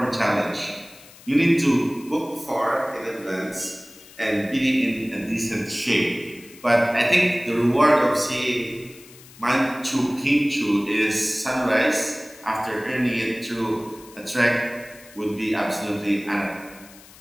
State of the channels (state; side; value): noise; left; hiss, 21 dB below the sound